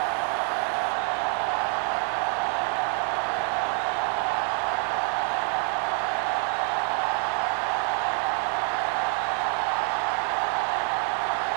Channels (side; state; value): left; quieter; 39.8 dB